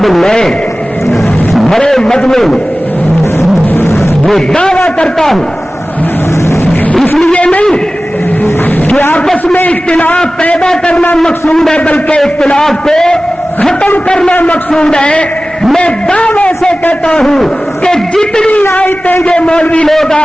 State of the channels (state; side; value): normal; both; correlation 0.97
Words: میں بڑے مجمع میں یہ دعویٰ کرتا ہوں، اس لیے نہیں کہ آپس میں اختلاف پیدا کرنا مقصود ہے بلکہ اختلاف کو ختم کرنا مقصود ہے. میں دعوے سے کہتا ہوں کہ جتنی آیتیں یہ مولوی لوگ